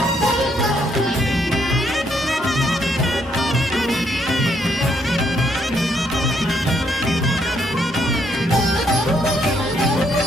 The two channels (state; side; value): normal; both; correlation 0.72